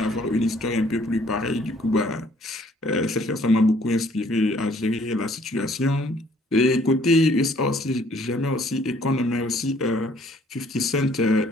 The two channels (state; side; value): normal; both; correlation 0.61